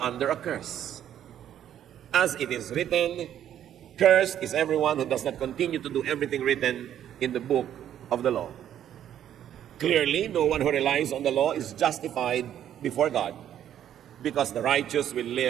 a curse. As it is written, Cursed is everyone who does not continue to do everything written in the book of the law. Clearly, no one who relies on the law is justified before God, because the righteous will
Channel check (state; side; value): quieter; left; 10.6 dB